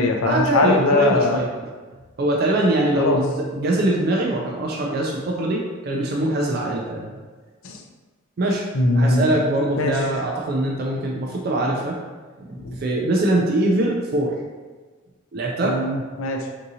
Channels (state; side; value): normal; both; correlation 0.38